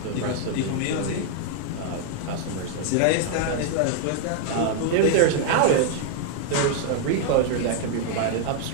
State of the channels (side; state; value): both; different; correlation 0.00